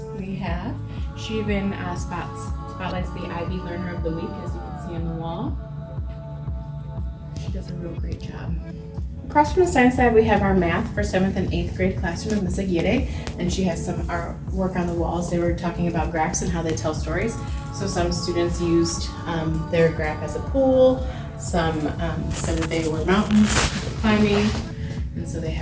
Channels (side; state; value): both; identical; correlation 1.00